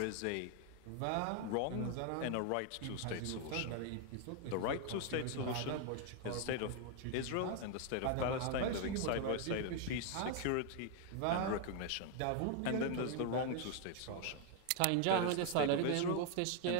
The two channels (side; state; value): both; different; correlation 0.00